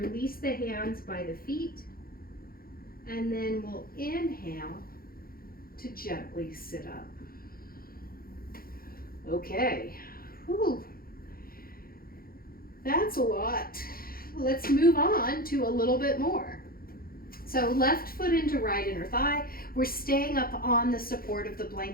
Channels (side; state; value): right; late; 0.43 ms